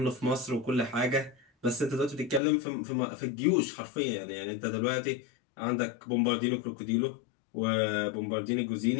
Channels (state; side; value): drops out; right; at 2.4 s